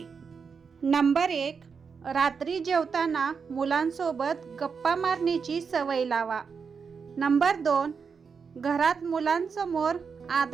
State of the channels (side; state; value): left; quieter; 5.8 dB